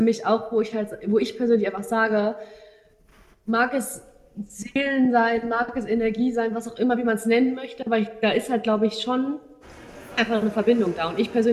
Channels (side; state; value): both; identical; correlation 1.00